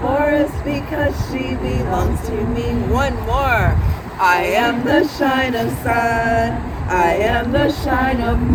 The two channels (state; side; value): identical; both; correlation 1.00